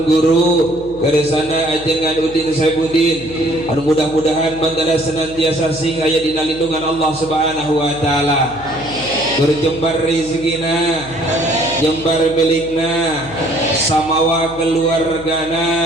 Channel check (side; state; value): left; noise; hum, 18 dB below the sound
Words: guru keresana ajengan Udin Saibudin anu mudah-mudahan mangga senantiasa sing aya dina lindungan Allah Subhanahu wa taala. Berjembar rezekina jembar milikna samawa keluargana